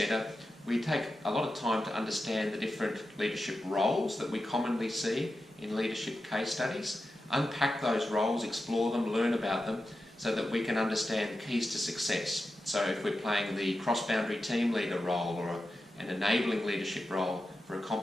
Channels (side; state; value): both; normal; correlation 0.91